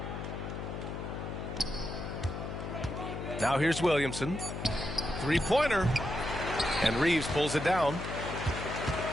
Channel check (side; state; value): left; noise; hum, 6 dB below the sound